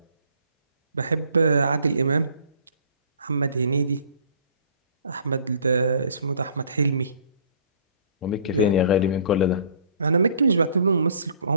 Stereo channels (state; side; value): inverted; both; correlation -0.53